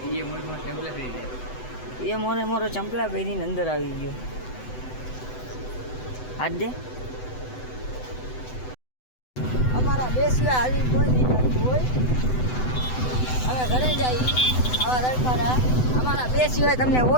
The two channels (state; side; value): late; right; 7.9 ms